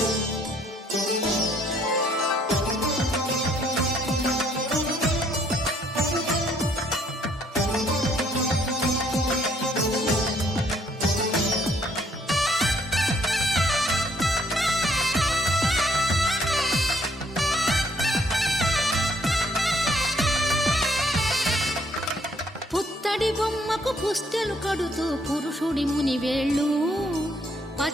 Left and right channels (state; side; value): normal; both; correlation 0.66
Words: పుత్తడి బొమ్మకు పుస్తెలు కడుతూ పురుషుడి ముని వేళ్ళు,